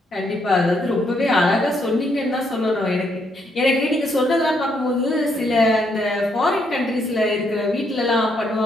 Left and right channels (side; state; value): both; normal; correlation 0.74